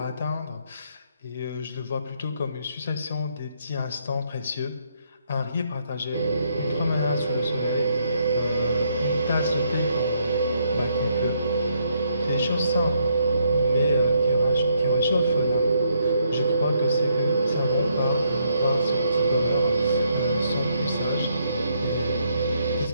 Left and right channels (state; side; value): inverted; both; correlation -0.74